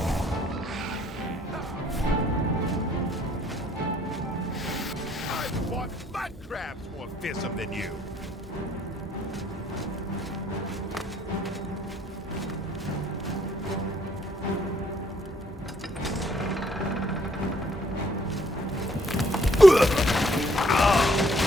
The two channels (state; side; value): normal; both; correlation 0.66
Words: I've fought mud crabs more fearsome than you!